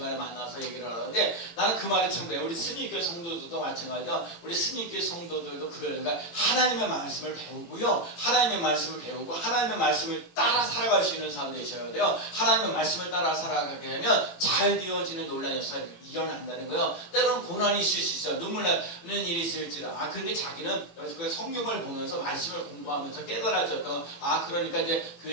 만나서 얘기를 하는데 나는 그 말이 참 그래요. 우리 스미교회 성도들도 마찬가지요. 우리 스미교회 성도들도 그러니까 하나님의 말씀을 배우고요. 하나님의 말씀을 배우고 하나님의 말씀을 따라 살아갈 수 있는 사람 되셔야 돼요. 하나님의 말씀을 따라 살아가게 되면 잘 되어지는 놀라운 역사가 일어난다는 거예요. 때로는 고난이 있을 수 있어요. 눈물 나는 일이 있을지도. 근데 자기는 성경을 보면서 말씀을 공부하면서 깨달아졌던 그러니까 이제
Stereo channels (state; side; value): late; right; 18 ms